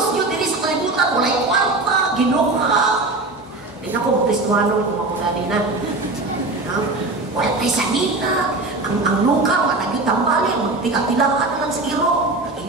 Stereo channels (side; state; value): left; quieter; 3.1 dB